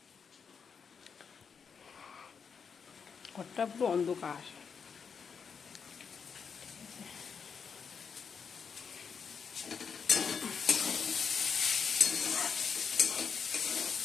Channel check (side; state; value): right; quieter; 6.3 dB